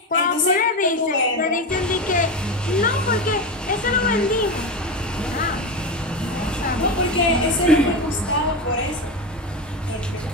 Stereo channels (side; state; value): both; normal; correlation 0.19